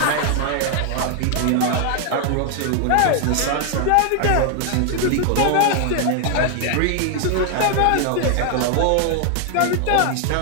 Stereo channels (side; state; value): both; different; correlation 0.00